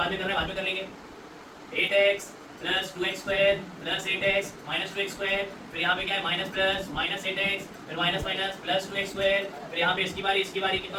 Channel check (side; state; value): both; identical; correlation 1.00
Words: में करना है, बाद में कर लेंगे, 8x plus 2x square plus 8x minus 2x square, फिर यहाँ पे क्या है माइनस प्लस माइनस 8x, फिर minus minus plus 2x square, फिर यहाँ पे इसकी बारी कितना